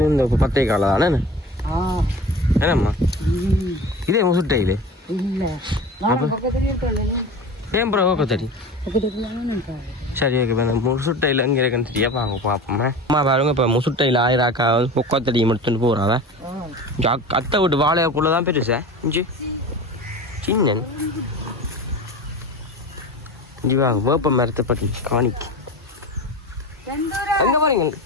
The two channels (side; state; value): both; normal; correlation 0.34